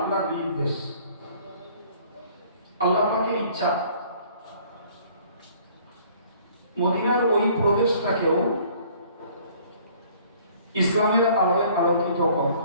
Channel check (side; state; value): both; inverted; correlation -0.56